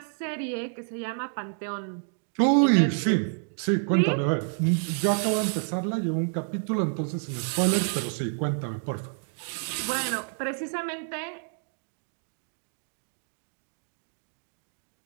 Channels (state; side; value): silent; left; 59 dB below the other